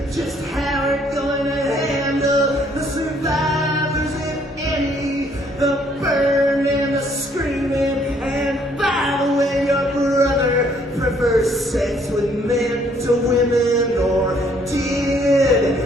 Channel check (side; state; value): both; normal; correlation 0.65